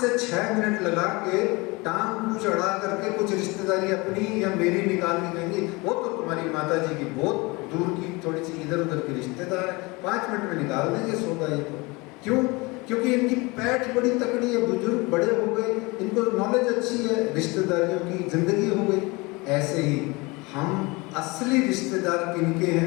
6 मिनट लगा के टांग को चढ़ा करके कुछ रिश्तेदारी अपनी या मेरी निकाल के कहेंगी, वो तो तुम्हारी माता जी की बहुत दूर की थोड़ी सी इधर उधर की रिश्तेदार है, 5 मिनट में निकाल देंगे सौदा। ये तो क्यों? क्योंकि इनकी पैठ बड़ी तकड़ी है, बुजुर्ग बड़े हो गए, इनको नॉलेज अच्छी है, रिश्तेदारियों की जिंदगी हो गई। ऐसे ही हम असली रिश्तेदार किनके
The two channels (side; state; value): right; quieter; 25.2 dB